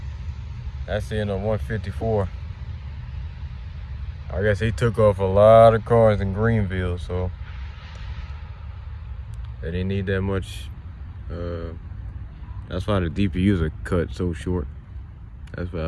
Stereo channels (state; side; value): identical; both; correlation 1.00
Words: That's the end of 154. I guess he took off a lot of cars in Greenville, so they didn't need that much. That's why the DPUs are cut so short. That's what